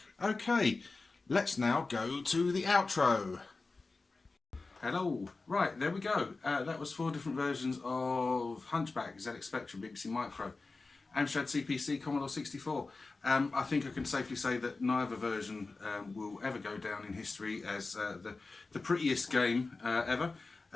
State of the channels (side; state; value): right; quieter; 3.7 dB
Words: Okay, let's now go to the outro. Hello. Right, there we go. That was 4 different versions of Hunchback, ZX Spectrum, BBC Micro, Amstrad CPC, Commodore 64. I think I can safely say that neither version will ever go down in history as the prettiest game ever.